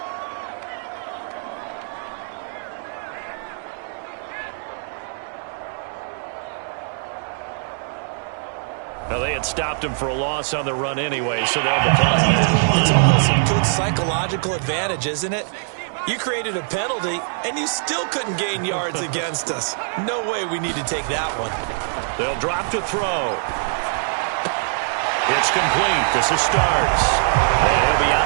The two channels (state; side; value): silent; left; digital silence